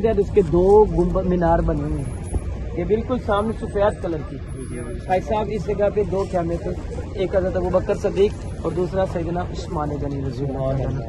है, उसके 2 गुंबद मीनार बने हुए हैं। ये बिल्कुल सामने सफेद कलर की। भाई साहब इस जगह पे 2 खैमे थे, एक हज़रत अबू बकर सदीक और दूसरा सैयदना उस्मान गनी रज़ी अल्लाह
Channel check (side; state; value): both; identical; correlation 1.00